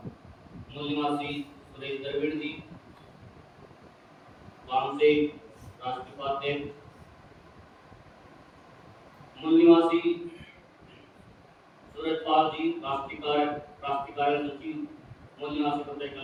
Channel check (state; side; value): identical; both; correlation 1.00